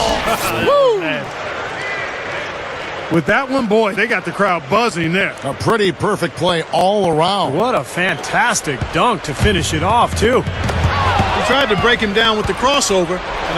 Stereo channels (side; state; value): both; identical; correlation 1.00